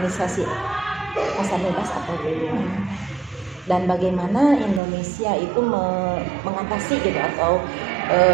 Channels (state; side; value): drops out; left; at 4.8 s